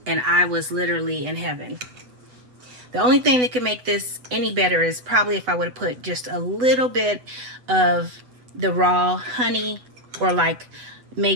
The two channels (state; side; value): late; left; 8.0 ms